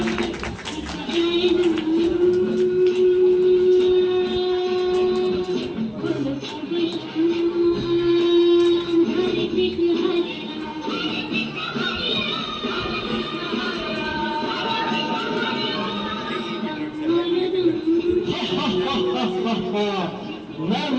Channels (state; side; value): identical; both; correlation 1.00